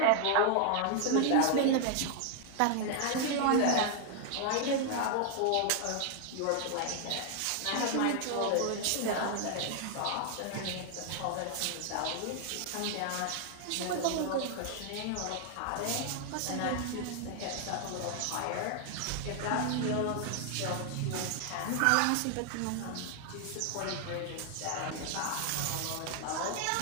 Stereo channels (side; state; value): both; different; correlation 0.00